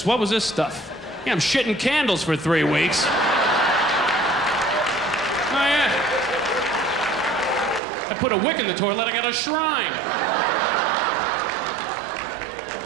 What was this stuff? Yeah, I'm shitting candles for 3 weeks. Oh, yeah. I put a wick in the toilet, I got a shrine.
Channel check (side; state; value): left; drops out; at 7.8 s